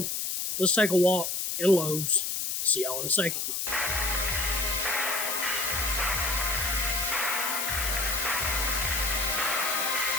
Let's take a walk in Lowe's. See y'all in a second.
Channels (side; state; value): left; noise; hiss, 2 dB below the sound